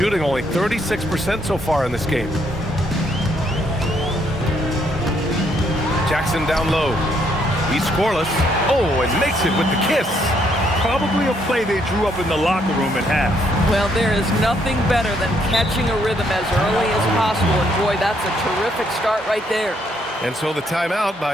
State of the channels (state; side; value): normal; both; correlation 0.71